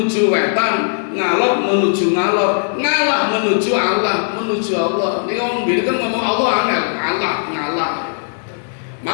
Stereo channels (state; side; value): silent; right; digital silence